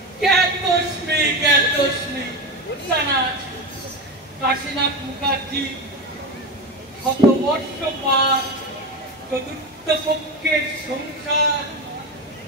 জ্ঞাতস্মি জানা আছে। কাশীনাথ মুখার্জি শত বর্ষ পার, চতুর্থ পক্ষের সংসার,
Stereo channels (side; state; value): both; normal; correlation 0.20